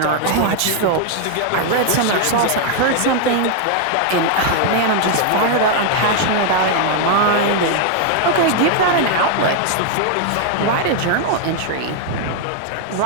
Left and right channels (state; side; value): different; both; correlation 0.00